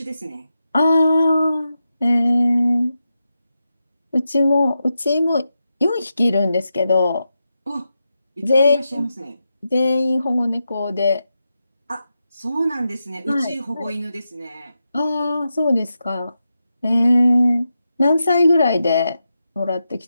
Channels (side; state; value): both; inverted; correlation -0.88